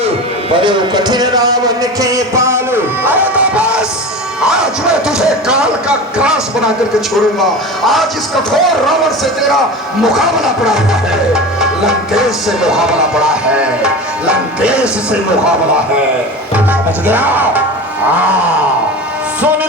बड़े कठिन रावण के पालो। अरे तो बस, आज मैं तुझे काल का ग्रास बना करके छोड़ूंगा। आज इस कठोर रावण से तेरा मुकाबला पड़ा हुआ है। लंकेश से मुकाबला पड़ा है, लंकेश से मुकाबला है। समझ गया? सुन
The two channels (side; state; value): both; normal; correlation 0.30